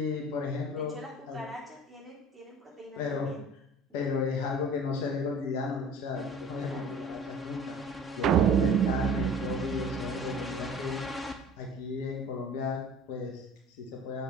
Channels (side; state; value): both; normal; correlation 0.44